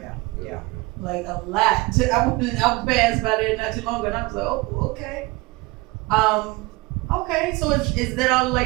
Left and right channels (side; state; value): left; quieter; 22.9 dB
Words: Yeah. Like a lot. I passed by there not too long ago and I was like, oh, okay. Okay, so is that all